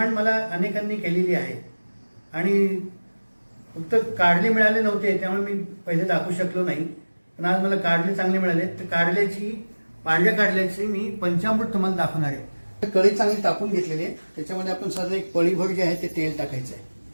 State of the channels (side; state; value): both; inverted; correlation -1.00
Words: मला अनेकांनी केलेली आहे आणि फक्त कारले मिळाले नव्हते त्यामुळे मी पहिले दाखवू शकलो नाही, पण आज मला कारले चांगले मिळाले तर पांढऱ्या कारल्याची मी पंचामृत तुम्हाला दाखवणार आहे। कढई चांगली तापून घेतलेली आहे, त्याच्यामध्ये आपण साधं एक पळीभर जे आहे ते तेल टाकायचं